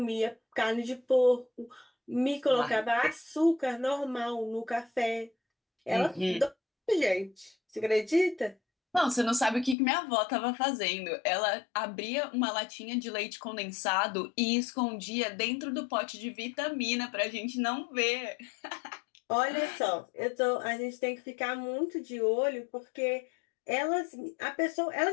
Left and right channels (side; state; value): right; drops out; at 9.8 s